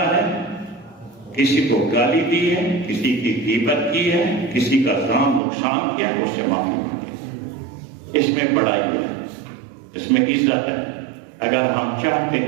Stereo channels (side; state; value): left; drops out; at 5.4 s